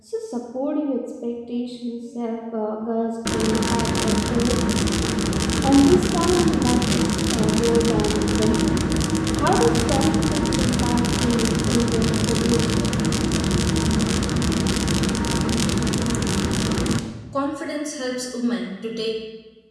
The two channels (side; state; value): both; identical; correlation 1.00